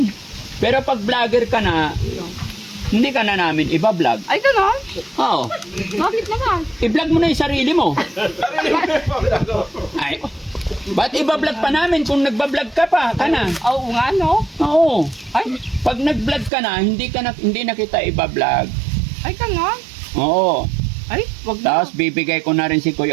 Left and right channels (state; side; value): drops out; left; at 16.5 s